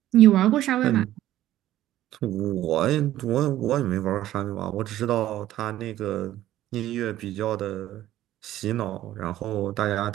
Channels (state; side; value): quieter; left; 13.7 dB